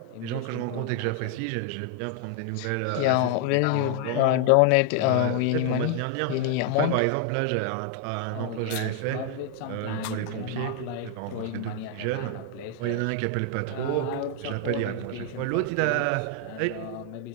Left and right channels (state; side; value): different; both; correlation 0.00